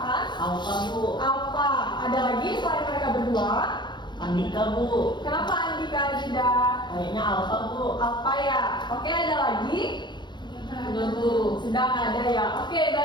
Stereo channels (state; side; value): late; right; 0.22 ms